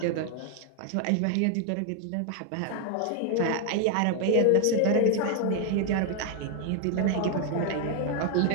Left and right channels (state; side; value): different; both; correlation 0.00